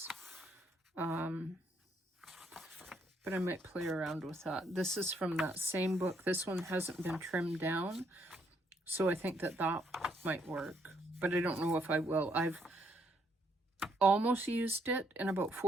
But but I might play around with that. This is from that same book. This one hasn't been trimmed down, so I think that that might work, but I don't know if I will. I've almost used it in about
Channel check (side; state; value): both; normal; correlation 0.72